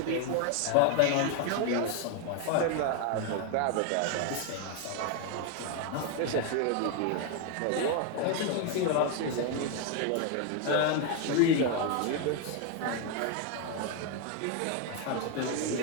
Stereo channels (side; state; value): both; different; correlation 0.01